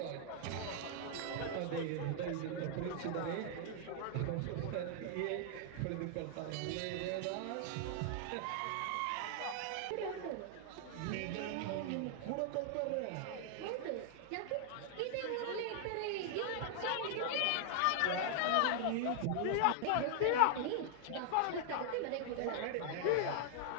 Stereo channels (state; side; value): different; both; correlation 0.00